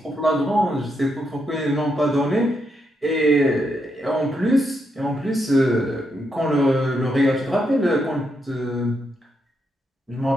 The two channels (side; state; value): both; normal; correlation 0.80